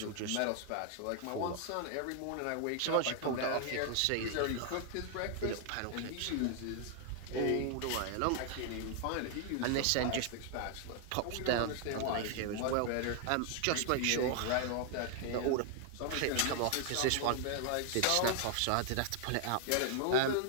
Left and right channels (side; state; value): both; different; correlation 0.00